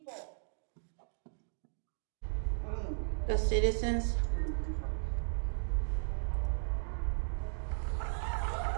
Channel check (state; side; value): silent; left; digital silence